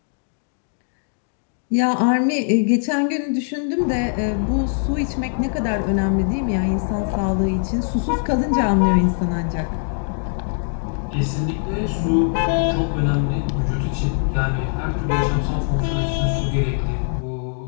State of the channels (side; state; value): right; silent; 64 dB below the other